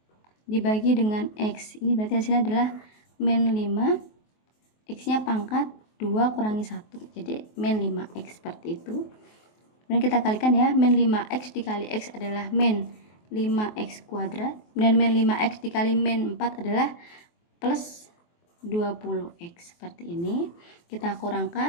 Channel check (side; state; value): right; late; 23 ms